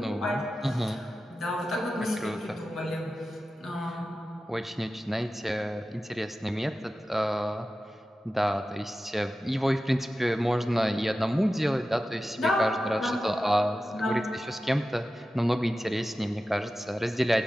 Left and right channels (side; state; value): both; normal; correlation 0.94